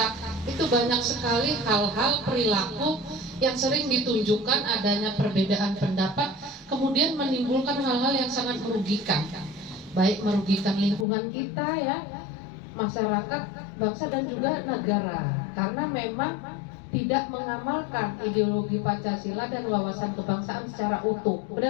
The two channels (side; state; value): right; drops out; at 11.1 s